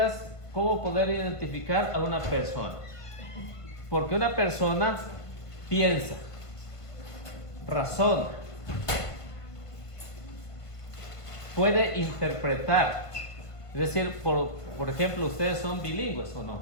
como poder identificar a una persona. Porque una persona piensa, razona, puede interpretar. Es decir, por ejemplo, ustedes son bilingües o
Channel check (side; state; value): right; late; 1.5 ms